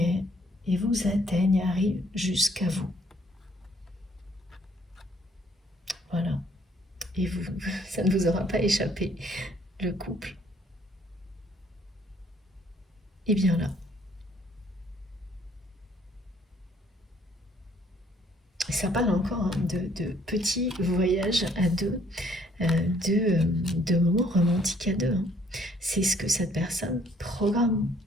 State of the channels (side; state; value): both; normal; correlation 0.63